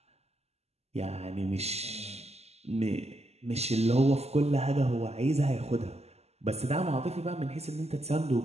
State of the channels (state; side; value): late; left; 0.30 ms